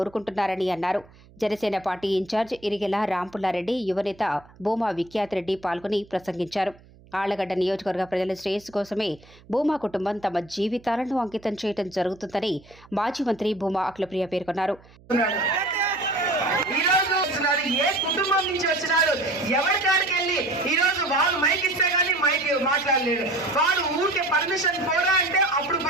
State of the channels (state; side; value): noise; right; hum, 25 dB below the sound